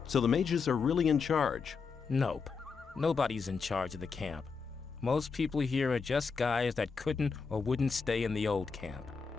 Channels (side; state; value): right; quieter; 5.2 dB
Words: So the mages are really in charge? Nope. Nobody's in charge of the camp. Most people here are just guys that couldn't or wouldn't stay in the old camp.